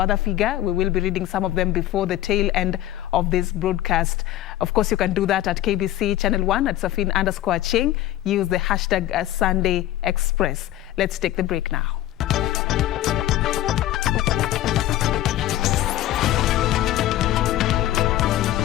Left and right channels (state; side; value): quieter; right; 13.9 dB